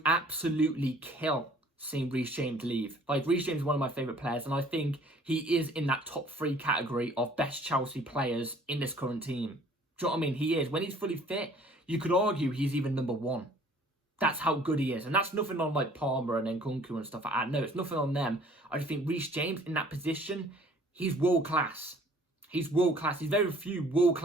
absolutely kill seeing Reece James leave. Like, Reece James is one of my favourite players, and I think he is in that top 3 category of best Chelsea players in this current team. Do you know what I mean? He is. When he's fully fit, you could argue he's even number 1. That's how good he is. And that's nothing on, like, Palmer and Nkunku and stuff like that. No, it's nothing on them. I just think Reece James, in that position, he's world class. He's world-class. He's very few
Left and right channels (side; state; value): both; normal; correlation 0.54